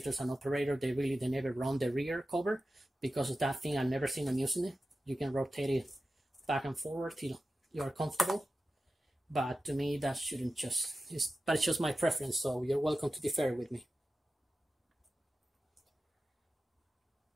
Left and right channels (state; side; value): normal; both; correlation 0.94